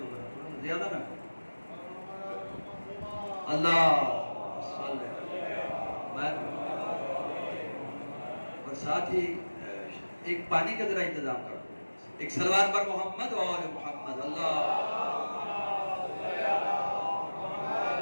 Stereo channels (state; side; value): inverted; both; correlation -1.00